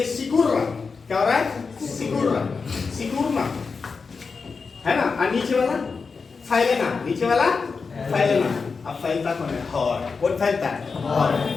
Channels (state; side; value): quieter; right; 4.9 dB